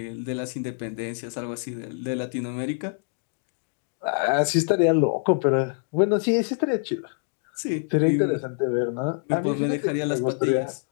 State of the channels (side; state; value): right; silent; 61 dB below the other